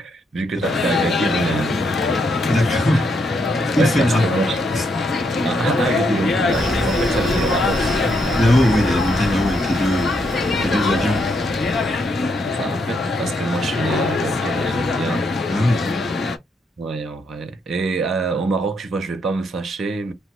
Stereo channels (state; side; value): normal; both; correlation 0.76